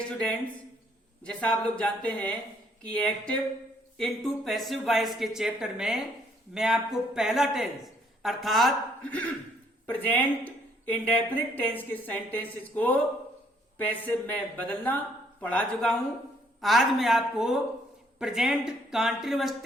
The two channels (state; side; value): normal; both; correlation 0.66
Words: स्टूडेंट्स, जैसा आप लोग जानते हैं कि एक्टिव इनटू पैसिव वॉइस के चैप्टर में मैं आपको पहला टेंस अर्थात प्रेजेंट इंडेफिनिट टेंस के सेंटेंसेस को पैसिव में बदलना पढ़ा चुका हूं। आज मैं आपको प्रेजेंट कॉन्टिन्यूअस